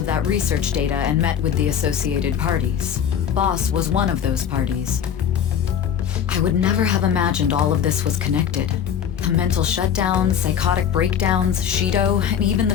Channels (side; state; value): right; quieter; 8.6 dB